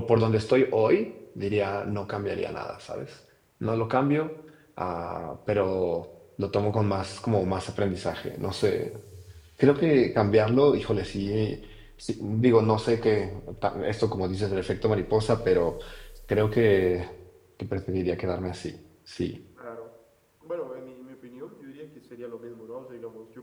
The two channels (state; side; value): identical; both; correlation 1.00